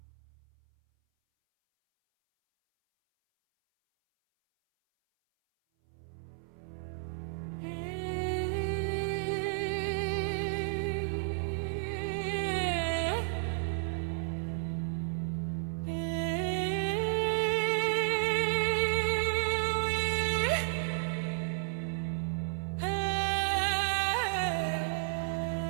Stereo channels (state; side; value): silent; left; 56 dB below the other